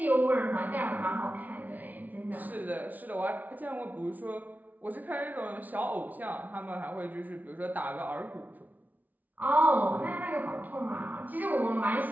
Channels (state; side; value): late; left; 0.077 ms